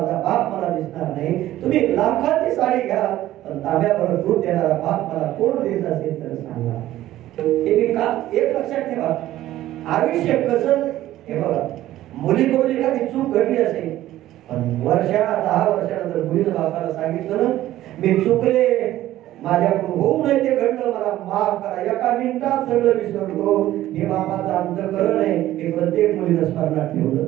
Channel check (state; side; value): quieter; left; 14.3 dB